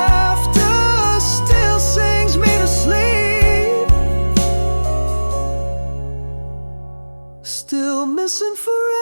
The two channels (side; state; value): both; inverted; correlation -1.00